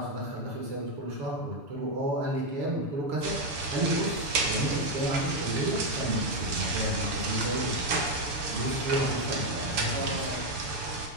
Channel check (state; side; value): late; left; 6.9 ms